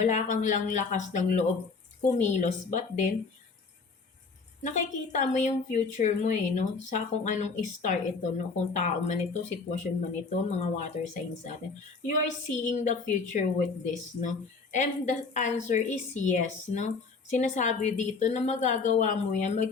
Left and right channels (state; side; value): quieter; right; 4.5 dB